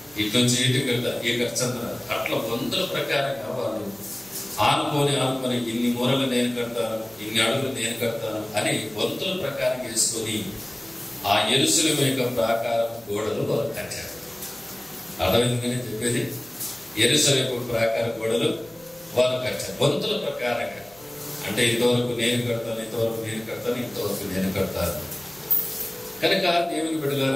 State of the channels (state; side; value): noise; right; hum, 25 dB below the sound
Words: ఇటు నుంచి ఇటు కడతా, ఈ ఖర్చు అంతా నాది, అట్లా వంతుల ప్రకారంగా వాళ్ళు ఆనుకొని ఇన్ని మూరలు నేను కడతాను, ఇన్ని అడుగులు నేను కడతాను అని వంతుల ప్రకారం వేసుకొని ఆ యెరూషలేము యొక్క ప్రాకారం గోడలు వారు కట్టారు. అర్థమైందని చెప్పేది, యెరూషలేము ప్రాకార గోడలు వారు కట్టారు వంతుల ప్రకారంగా. అంటే ఇంతవరకు నేను కడతాను, ఇంతవరకు నేను కడతాను, ఇంతవరకు నేను కడతాను. కనుక దేవుని